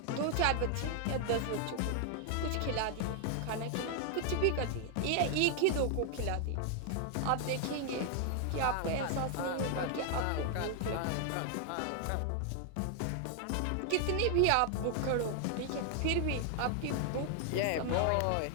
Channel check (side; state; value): both; different; correlation 0.00